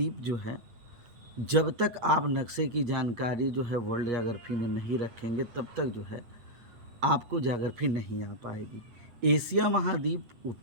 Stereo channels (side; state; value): left; late; 8.5 ms